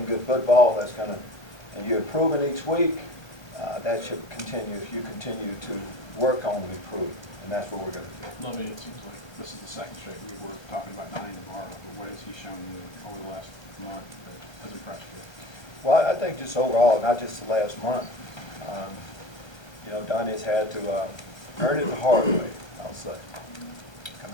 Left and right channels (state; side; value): late; right; 1.3 ms